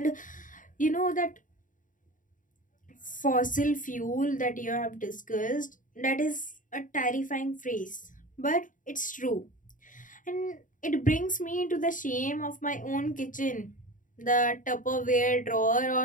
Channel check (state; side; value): late; right; 0.38 ms